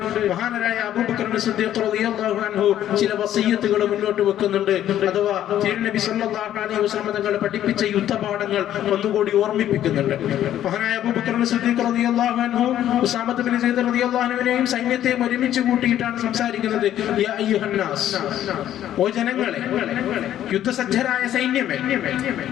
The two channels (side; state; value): right; quieter; 11.7 dB